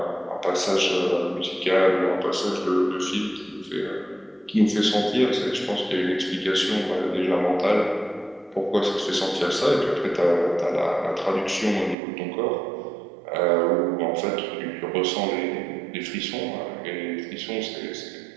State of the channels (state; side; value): drops out; left; at 12.0 s